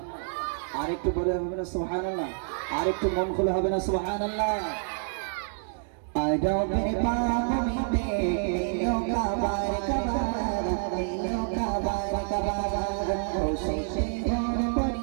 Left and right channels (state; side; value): silent; left; digital silence